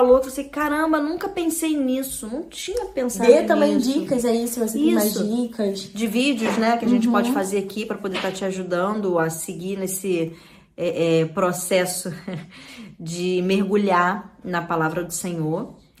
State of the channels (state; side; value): identical; both; correlation 1.00